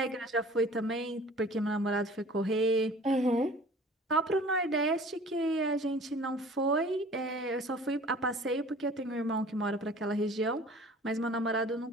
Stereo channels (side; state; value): both; normal; correlation 0.47